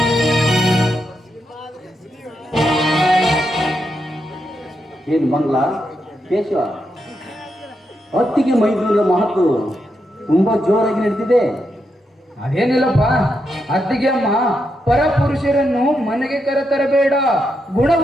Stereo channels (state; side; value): normal; both; correlation 0.83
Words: ಏನು ಮಂಗ್ಲ ಕೇಶವ, ಹೊತ್ತಿಗೆ ಮೈದೂರಿನ ಮಹತ್ವ ತುಂಬಾ ಜೋರಾಗಿ ನಡೆದಿದೆ. ಅದೇನಿಲ್ಲಪ್ಪ, ಅತ್ತಿಗೆ ಅಮ್ಮ ಪರಪುರುಷರನ್ನು ಮನೆಗೆ ಕರೆತರಬೇಡ,